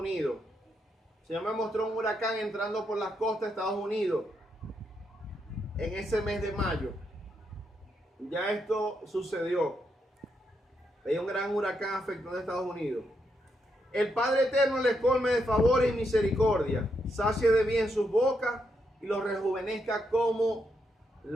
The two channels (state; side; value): normal; both; correlation 0.80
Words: Señor me mostró un huracán entrando por las costas de Estados Unidos en ese mes de mayo. Ya esto sucedió. Hay un gran huracán afectando a Estados Unidos. El Padre Eterno les colme de favores y misericordia, sacie de bien sus bocas y los rejuvenezca como